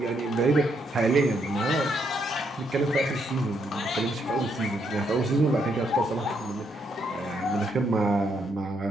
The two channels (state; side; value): normal; both; correlation 0.75